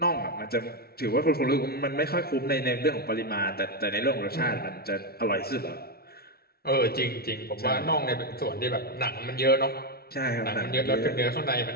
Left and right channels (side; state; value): right; late; 0.45 ms